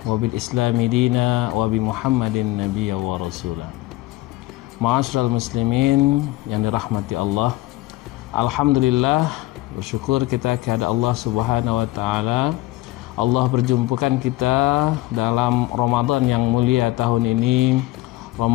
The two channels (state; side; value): quieter; right; 18.2 dB